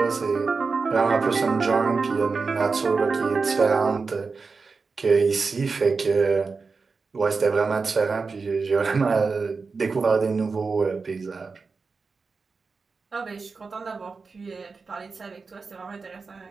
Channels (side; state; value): left; quieter; 4.5 dB